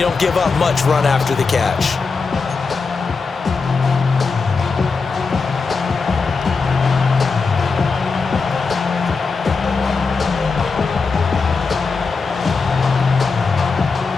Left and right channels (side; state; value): right; quieter; 4.6 dB